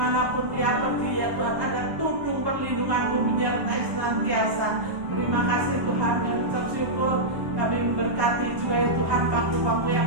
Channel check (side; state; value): left; late; 1.1 ms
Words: dia pergi ya Tuhan, ada tudung perlindungan-Mu menyertai senantiasa. Terima kasih Tuhan, yang ucap syukur. Kami memberkati juga ya Tuhan bangku-bangku